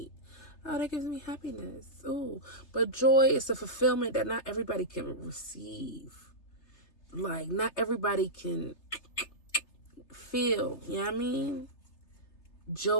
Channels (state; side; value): late; right; 3.3 ms